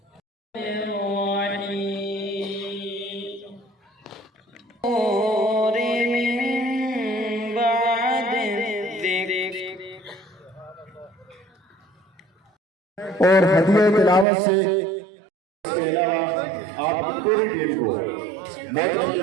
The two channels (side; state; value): left; drops out; at 14.2 s